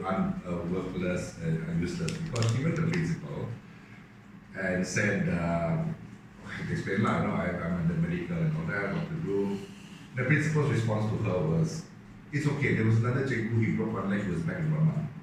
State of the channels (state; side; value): identical; both; correlation 1.00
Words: and useless because she went to the principal and said, I have to explain lah, I'm under medical and all that, what to do. The principal's response to her was, it's okay, there was another cikgu, he broke one leg, he was back in 1 month.